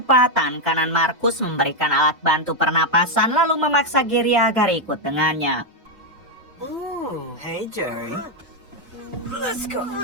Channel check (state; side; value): normal; both; correlation 0.02